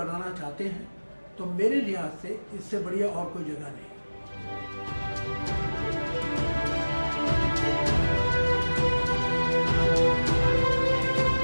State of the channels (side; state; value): both; inverted; correlation -1.00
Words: चाहते हैं तो मेरे लिहाज से इससे बढ़िया और कोई जगह नहीं।